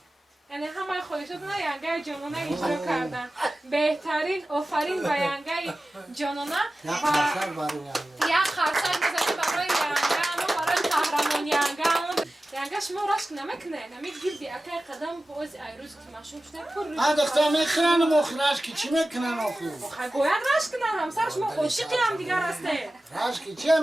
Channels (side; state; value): both; normal; correlation 0.95